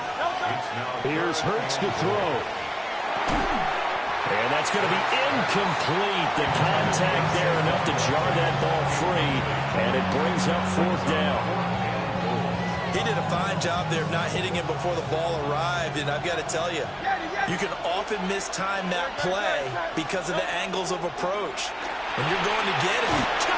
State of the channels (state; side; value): identical; both; correlation 1.00